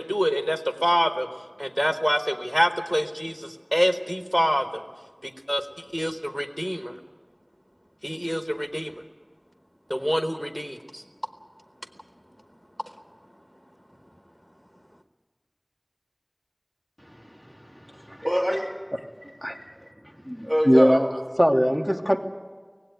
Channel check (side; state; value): both; identical; correlation 1.00